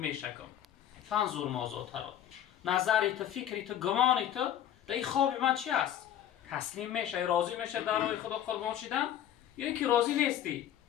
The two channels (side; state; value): right; quieter; 10.9 dB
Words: فانظر ماذا تری نظری تو فکری تو گمانی تو در این خواب من چی است؟ تسلیم میشه راضی میشه در راه خدا قربان شدن یا اینکه راضی نیستی؟